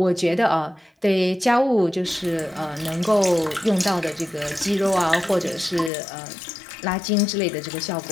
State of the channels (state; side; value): drops out; right; at 5.9 s